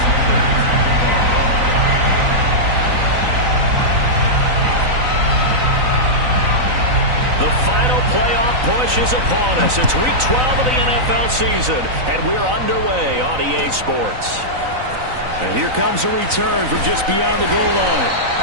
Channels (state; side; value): late; left; 3.9 ms